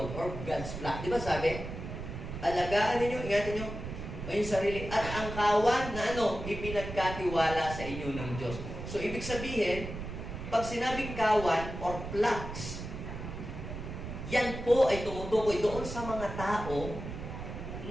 or God's flock. Di ba sabi? Alagaan ninyo, ingatan nyo ang sarili at ang kawan na ipinagkatiwala sa inyo ng Diyos. So ibig sabihin, pag sinabing kawan or flocks, yan po ay tumutukoy doon sa mga tao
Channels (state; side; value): noise; right; rumble, 8 dB below the sound